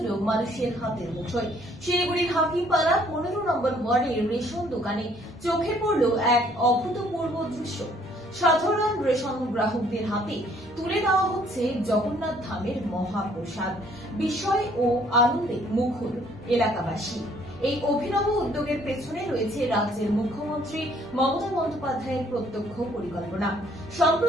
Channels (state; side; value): normal; both; correlation 0.62